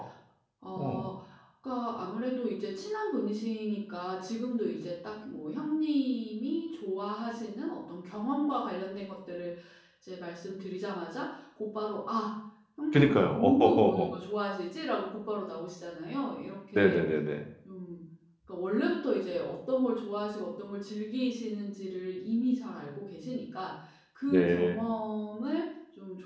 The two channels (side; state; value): both; identical; correlation 1.00